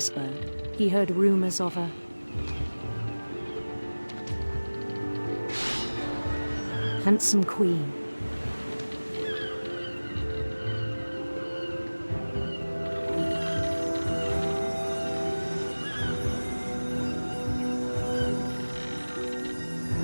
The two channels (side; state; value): both; inverted; correlation -1.00